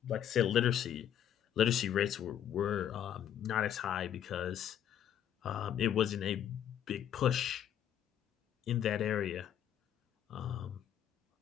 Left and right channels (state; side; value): quieter; right; 10.1 dB